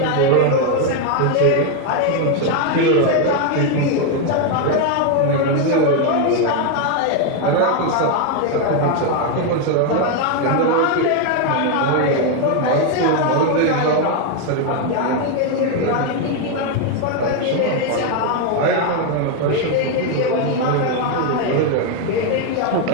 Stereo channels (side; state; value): both; different; correlation 0.01